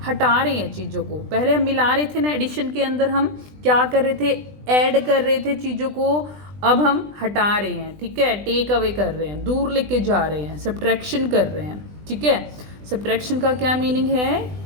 हटा रहे हैं चीज़ों को। पहले हम मिला रहे थे ना, एडिशन के अंदर हम क्या कर रहे थे, ऐड कर रहे थे चीज़ों को, अब हम हटा रहे हैं। ठीक है, टेक अवे कर रहे हैं, दूर लेके जा रहे हैं, सब्ट्रैक्शन कर रहे हैं। ठीक है, सब्ट्रैक्शन का क्या मीनिंग है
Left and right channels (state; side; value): late; left; 20 ms